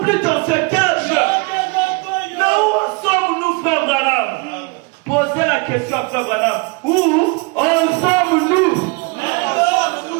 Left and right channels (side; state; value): left; quieter; 29.3 dB